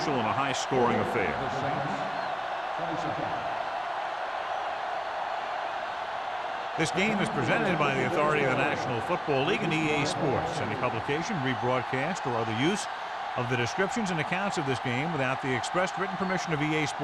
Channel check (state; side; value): identical; both; correlation 1.00